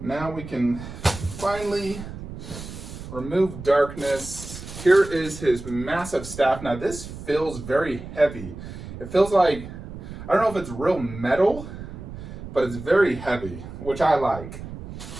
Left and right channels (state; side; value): noise; right; rumble, 11 dB below the sound